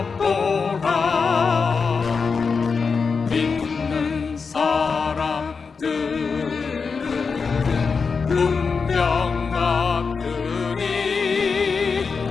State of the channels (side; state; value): right; quieter; 5.1 dB